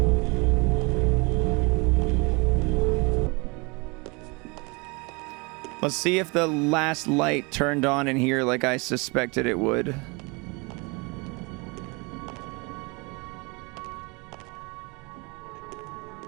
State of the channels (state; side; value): quieter; left; 28.5 dB